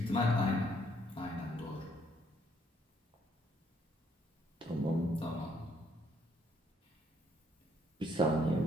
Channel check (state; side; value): normal; both; correlation 0.68